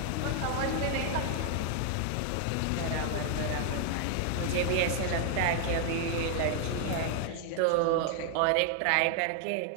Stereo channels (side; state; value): both; different; correlation 0.00